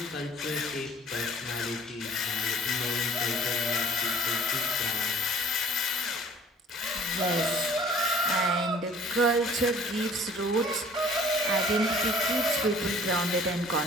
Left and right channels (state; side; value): normal; both; correlation 0.52